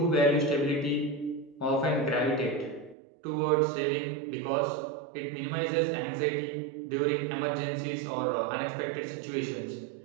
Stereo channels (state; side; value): drops out; left; at 3.0 s